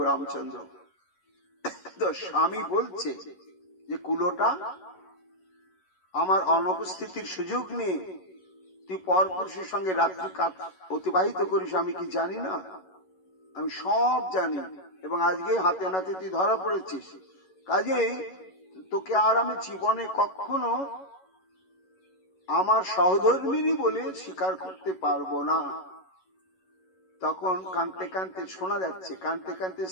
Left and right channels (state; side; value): late; right; 11 ms